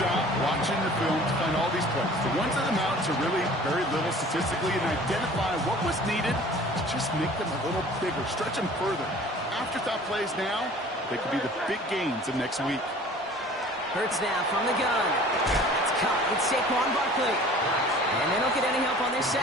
watching the film to find all these plays. The ones that amount to really very little statistically and identify what was needed to just make them a little bigger, stretch them further. Afterthought plays now, they could be the big gains of next week. Hurts now from the gun. That's caught. It's Saquon Barkley. And they don't get any help on their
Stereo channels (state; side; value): normal; both; correlation 0.47